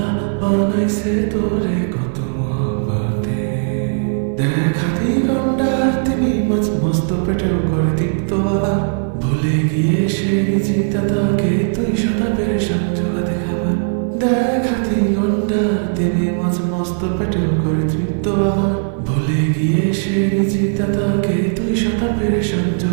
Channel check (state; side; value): silent; left; 56 dB below the other